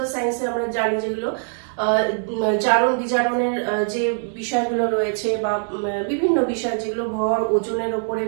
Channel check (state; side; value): silent; left; digital silence